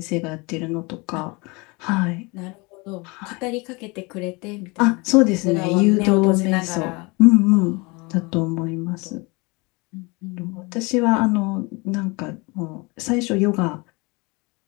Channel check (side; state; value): right; quieter; 27.1 dB